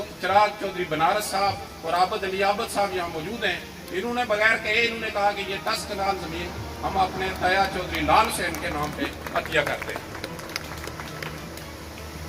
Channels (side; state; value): both; identical; correlation 1.00